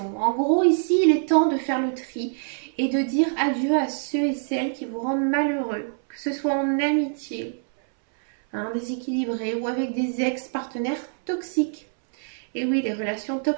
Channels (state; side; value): silent; left; 62 dB below the other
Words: En gros, ici, il est temps de faire le tri et de dire adieu à ceux et celles qui vous rendent malheureux, que ce soit en amitié, hein, déséquilibré, ou avec des ex-partenaires toxiques. Et oui, les relations